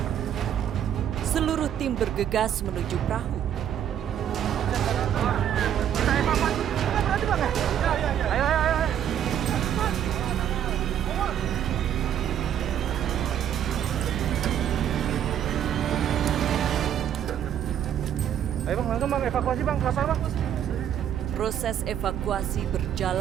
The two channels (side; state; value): left; quieter; 9.9 dB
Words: Seluruh tim bergegas menuju perahu. Ayo. Ayo bang, langsung bang, evakuasi bang, kapal bang. Proses evakuasi